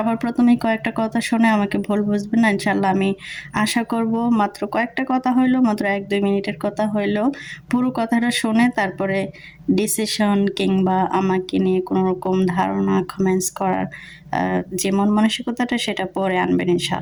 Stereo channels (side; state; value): both; identical; correlation 1.00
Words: প্রথমেই কয়েকটা কথা শুনে আমাকে ভুল বুঝবেন না ইনশাআল্লাহ। আমি আশা করব মাত্র কয়েকটা কথা হইলো, মাত্র 1-2 মিনিটের কথা হইলো, পুরো কথাটা শুনে তারপরে ডিসিশন কিংবা আমাকে নিয়ে কোনো রকম ধারণা কমেন্টস করার যে মন মানসিকতাটা সেটা পরে আনবেন